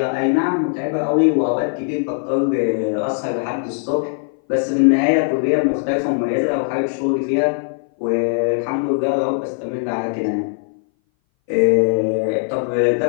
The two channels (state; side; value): silent; right; 60 dB below the other